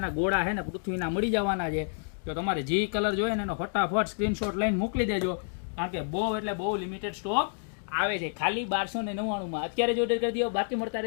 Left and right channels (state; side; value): silent; right; digital silence